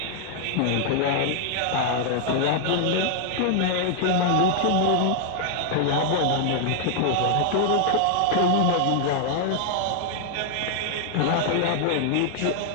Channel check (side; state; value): both; different; correlation 0.00